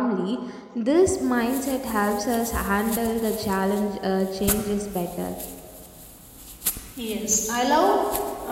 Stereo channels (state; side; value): identical; both; correlation 1.00